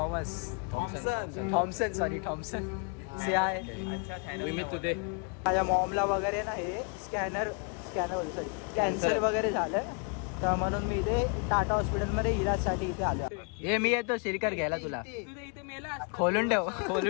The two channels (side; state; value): right; quieter; 36.5 dB